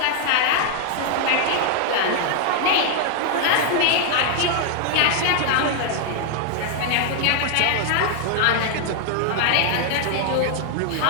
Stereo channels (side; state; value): both; different; correlation 0.00